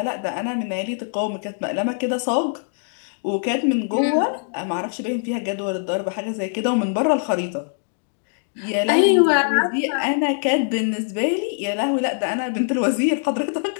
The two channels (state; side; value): silent; right; digital silence